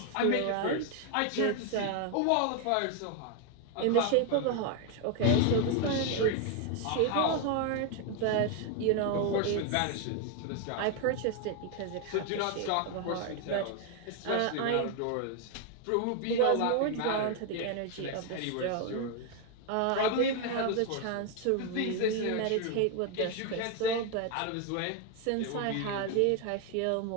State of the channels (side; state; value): both; different; correlation 0.01